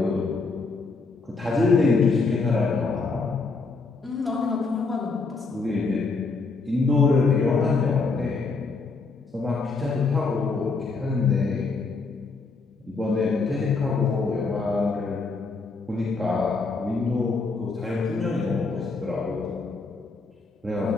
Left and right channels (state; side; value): quieter; right; 4.1 dB